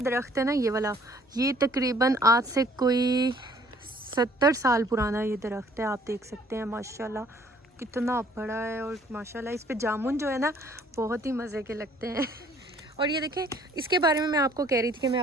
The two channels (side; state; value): both; normal; correlation 0.59